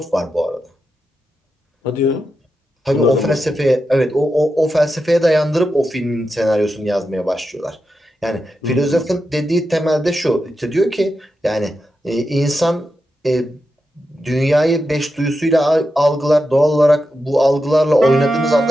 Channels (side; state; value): both; normal; correlation 0.88